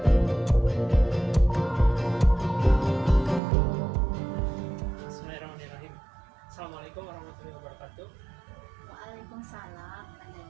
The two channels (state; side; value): drops out; left; at 3.4 s